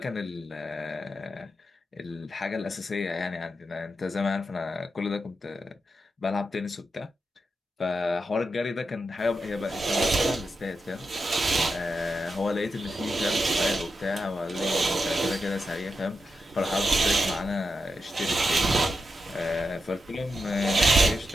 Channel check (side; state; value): both; normal; correlation 0.87